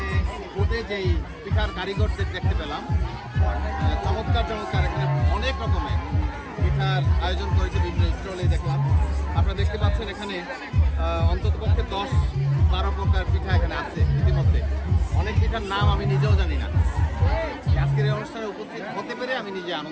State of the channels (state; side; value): identical; both; correlation 1.00